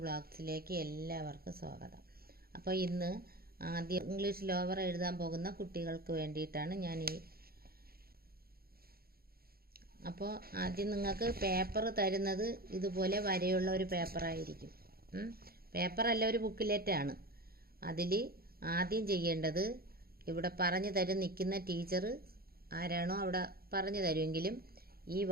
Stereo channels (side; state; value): left; late; 0.44 ms